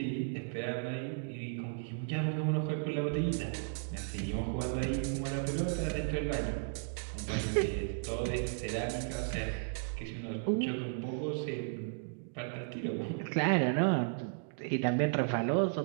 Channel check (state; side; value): silent; left; digital silence